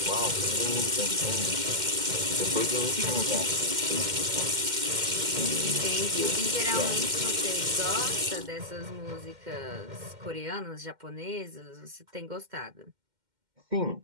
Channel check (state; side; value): late; left; 2.1 ms